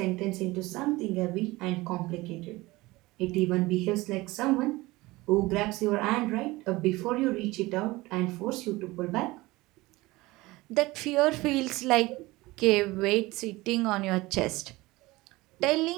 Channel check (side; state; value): left; quieter; 20.5 dB